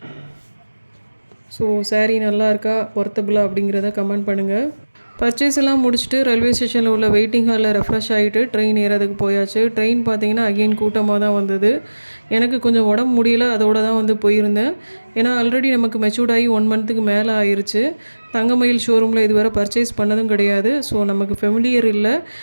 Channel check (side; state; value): both; inverted; correlation -1.00